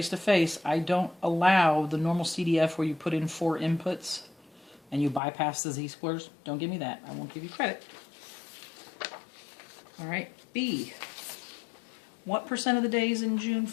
I don't allow the normal CDF where you put in 4 inputs and you bypass the z-scores. Don't give me that. I won't give you credit. All right, B. What percent of the days in June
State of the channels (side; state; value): right; drops out; at 5.2 s